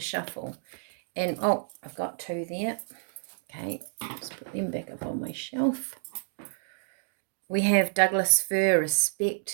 shuffle. And, oh, I've got two there. Okay, let's put them back up on my shelf. We have Douglas Fir,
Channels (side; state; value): left; silent; digital silence